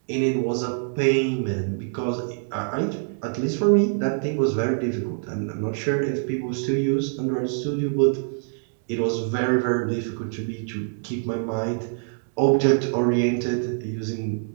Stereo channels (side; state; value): left; silent; 62 dB below the other